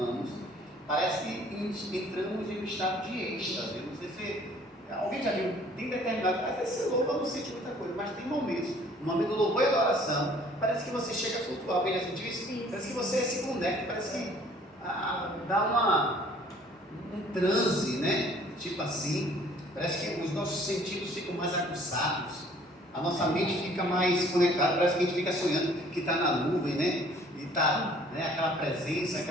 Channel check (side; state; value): both; normal; correlation 0.56